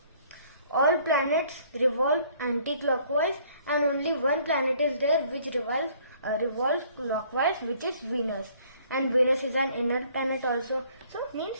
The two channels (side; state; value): both; inverted; correlation -0.59